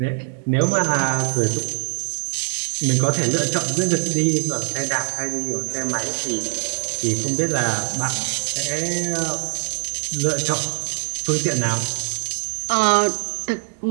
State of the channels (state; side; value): silent; left; digital silence